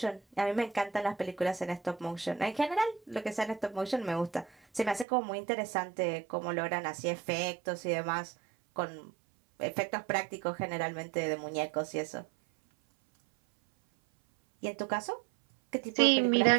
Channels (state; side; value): drops out; left; at 5.1 s